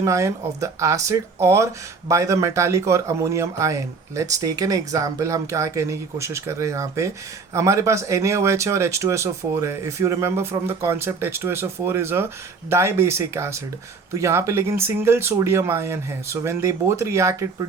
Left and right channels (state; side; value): quieter; left; 4.7 dB